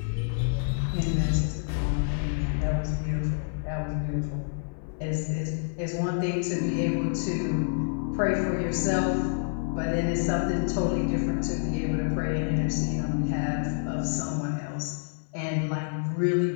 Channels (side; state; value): right; silent; 59 dB below the other